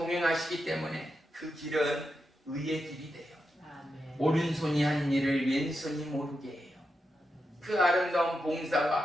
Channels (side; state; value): both; normal; correlation 0.87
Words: 때문에 그 길은 의의 길이 돼요. 아멘. 오른손이 한 일을 왼손이 모르게 해요. 그 아름다운